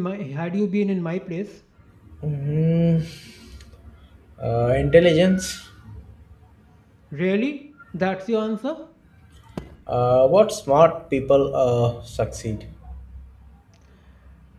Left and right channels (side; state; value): both; identical; correlation 1.00